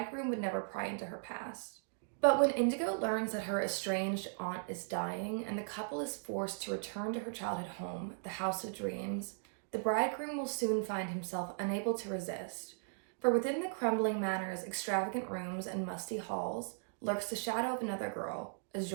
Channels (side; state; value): left; silent; digital silence